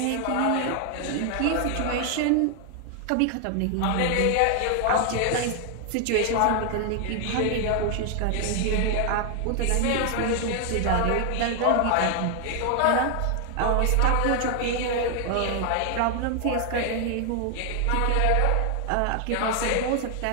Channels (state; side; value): different; both; correlation 0.00